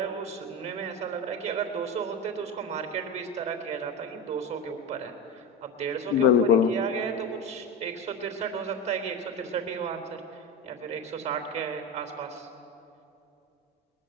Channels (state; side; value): normal; both; correlation 0.21